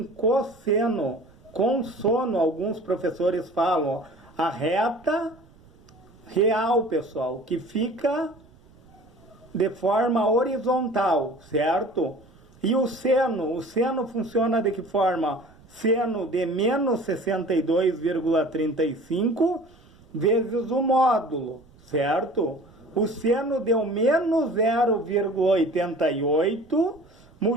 cosseno, consono, alguns professores falam, ó, a reta real, pessoal, que fica de forma horizontal, certo? E o seno funciona de que forma? Seno de menos 62,35 vezes o módulo, certo? O seno deu menos 0,88,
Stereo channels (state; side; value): noise; right; rumble, 27 dB below the sound